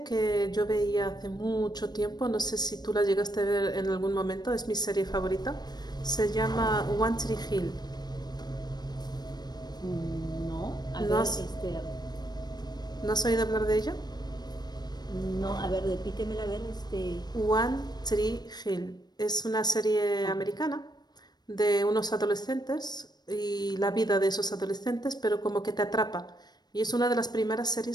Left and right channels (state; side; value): late; right; 0.20 ms